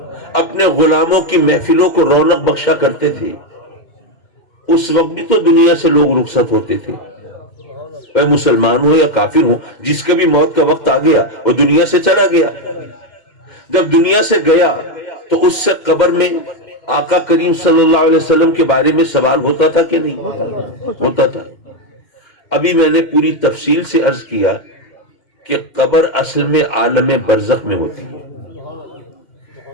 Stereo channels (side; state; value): right; late; 2.1 ms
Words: اپنے غلاموں کی محفلوں کو رونق بخشا کرتے تھے، اس وقت بھی تو دنیا سے لوگ رخصت ہوتے تھے، چاہے مسلمان ہو یا کافر ہو، جس کا بھی موت کا وقت آ گیا وہ دنیا سے چلا گیا۔ جب دنیا سے گیا تو اس سے قبر میں آقا کریم صلی اللہ علیہ وسلم کے بارے میں سوال ہوتا تھا کہ نہیں؟ ہوتا تھا۔ ابھی میں نے پوری تفصیل سے عرض کیا کہ قبر اصل میں عالم برزخ میں ہوتی ہے۔